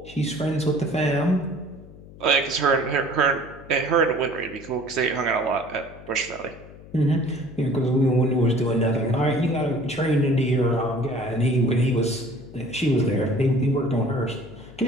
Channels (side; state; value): left; noise; hum, 19 dB below the sound